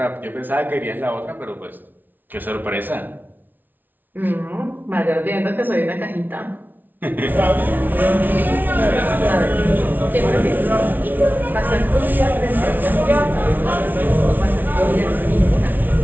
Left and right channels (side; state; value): left; late; 0.086 ms